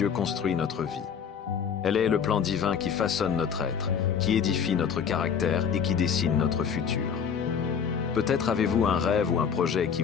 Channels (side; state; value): right; quieter; 7.1 dB